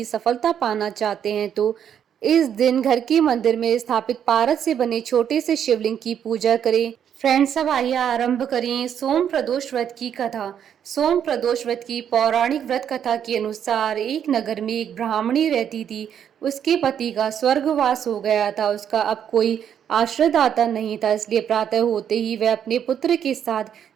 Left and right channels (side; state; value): left; quieter; 8.9 dB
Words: सफलता पाना चाहते हैं तो इस दिन घर के मंदिर में स्थापित पारद से बने छोटे से शिवलिंग की पूजा करें। फ्रेंड्स, अब आइए आरंभ करें सोम प्रदोष व्रत की कथा। सोम प्रदोष व्रत की पौराणिक व्रत कथा के अनुसार एक नगर में एक ब्राह्मणी रहती थी। उसके पति का स्वर्गवास हो गया था। उसका अब कोई आश्रयदाता नहीं था, इसलिए प्रातः होते ही वह अपने पुत्र के साथ